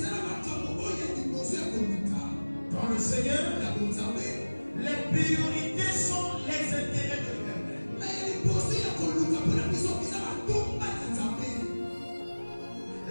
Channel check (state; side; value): inverted; both; correlation -1.00